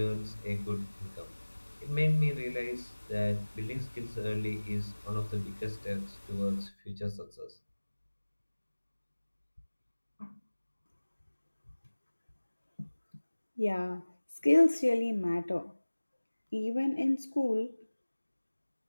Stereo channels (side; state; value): both; inverted; correlation -1.00